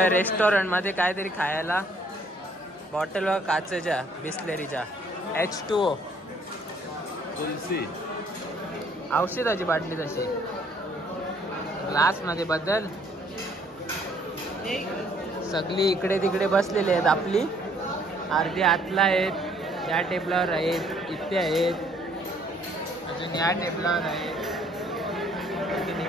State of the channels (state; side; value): normal; both; correlation 0.63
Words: रेस्टॉरंट मध्ये काहीतरी खायला. बॉटल व काचेच्या बिस्लेरीच्या H2O तुलसी औषधाची बाटली तशी ग्लास मध्ये बदल. सगळी इकडे तिकडे बसलेले आहेत. आपली अर्धी आतला आहेत, या टेबलावर आहेत, इथे आहेत, अजून या टेबलावर आहेत, अजून